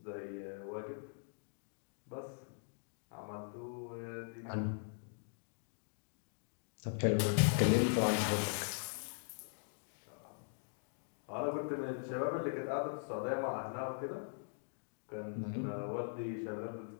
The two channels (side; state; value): right; silent; digital silence